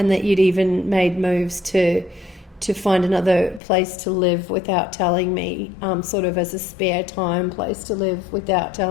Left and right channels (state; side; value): drops out; right; at 3.6 s